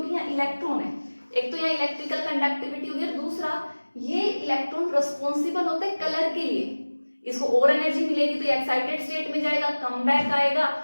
यहाँ इलेक्ट्रॉन है। एक तो यहाँ इलेक्ट्रिकल कंडक्टिविटी होगी, और दूसरा ये इलेक्ट्रॉन रिस्पॉन्सिबल होते हैं कलर के लिए। इसको और एनर्जी मिलेगी तो एक्साइटेड स्टेट में जाएगा, कम बैक आएगा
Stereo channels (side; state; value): both; inverted; correlation -1.00